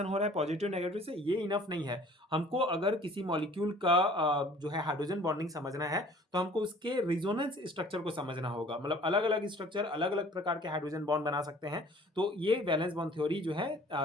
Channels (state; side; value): normal; both; correlation 0.52